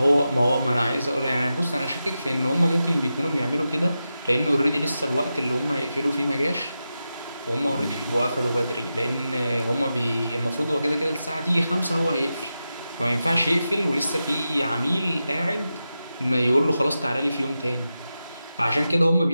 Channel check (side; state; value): both; inverted; correlation -0.91